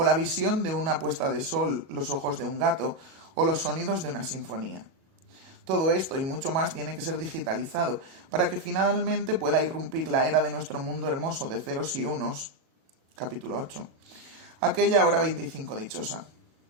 la visión de una puesta de sol, los ojos de un gato, o los sonidos de una sinfonía. Todo esto y mucho más tiene que ser digitalizado para que finalmente pueda irrumpir la era de nuestro mundo hermoso de ceros y unos, capítulo 8, aquella hora 25 dichosa.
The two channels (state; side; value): late; left; 37 ms